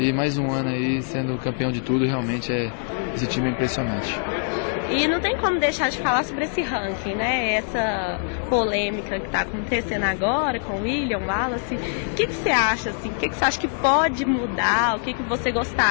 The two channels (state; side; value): silent; right; digital silence